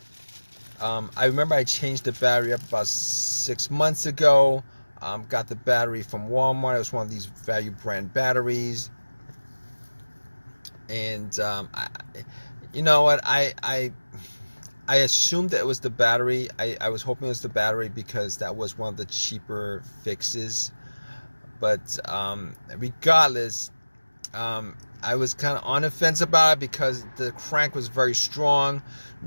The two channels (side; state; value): both; inverted; correlation -1.00